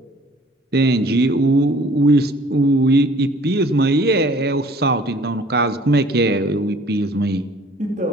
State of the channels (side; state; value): both; normal; correlation 0.53